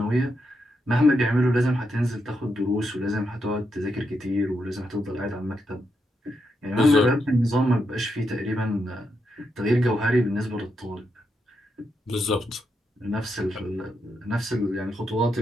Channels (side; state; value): both; normal; correlation 0.83